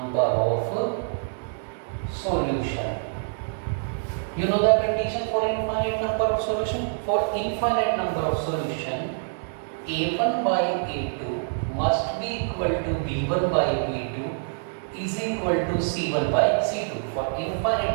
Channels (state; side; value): silent; left; digital silence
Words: of solution. You know the condition for infinite number of solution? For infinite number of solution, a1 by a2 must be equal to b1 by b2 is equal to c1 by c2. For infinite